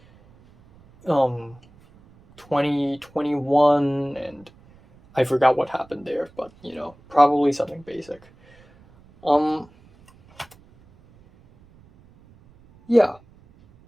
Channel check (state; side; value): noise; right; rumble, 28 dB below the sound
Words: 2021, and I forgot what happened there, but probably something basic. Yeah.